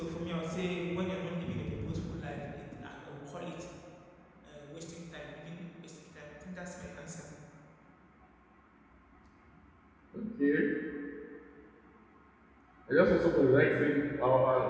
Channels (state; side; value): identical; both; correlation 1.00